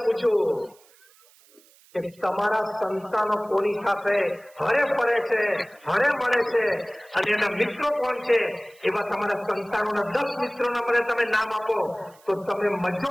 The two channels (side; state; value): right; noise; hiss, 28 dB below the sound